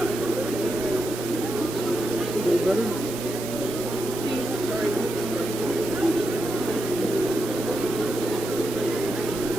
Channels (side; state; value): both; normal; correlation 0.86